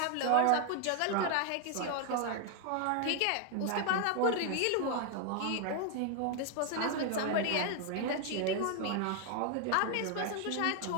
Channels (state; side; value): different; both; correlation 0.00